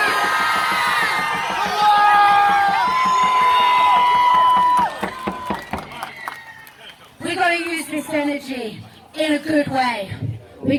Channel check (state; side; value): identical; both; correlation 1.00